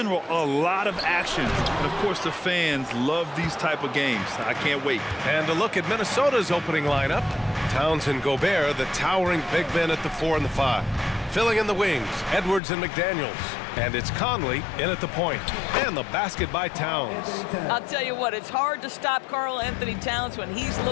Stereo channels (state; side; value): drops out; right; at 12.6 s